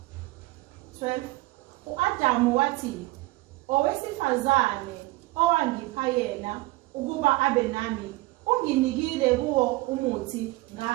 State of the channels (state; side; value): quieter; left; 20.4 dB